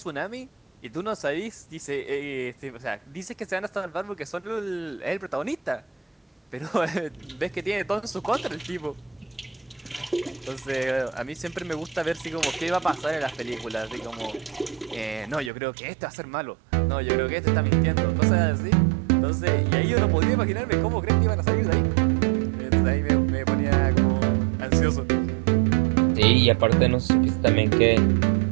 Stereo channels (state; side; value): drops out; left; at 15.5 s